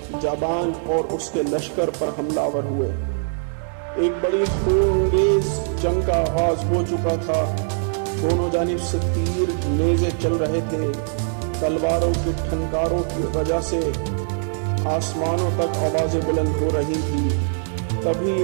جابان اور اس کے لشکر پر حملہ آور ہوئے۔ ایک بڑی خونریز جنگ کا آغاز ہو چکا تھا۔ دونوں جانب سے تیر نیزے چل رہے تھے۔ تلواروں کی ٹھنکاروں کی وجہ سے آسمانوں تک آوازیں بلند ہو رہی تھی۔ تبھی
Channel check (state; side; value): silent; left; digital silence